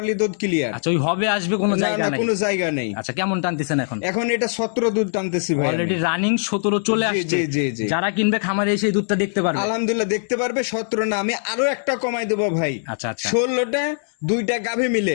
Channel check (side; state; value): right; silent; 65 dB below the other